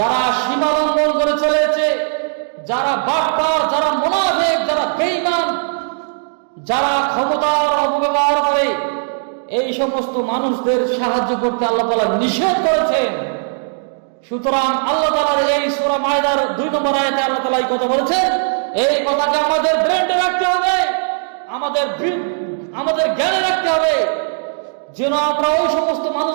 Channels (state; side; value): silent; left; digital silence